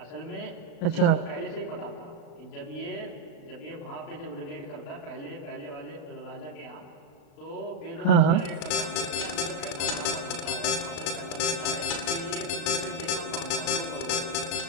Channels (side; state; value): right; late; 36 ms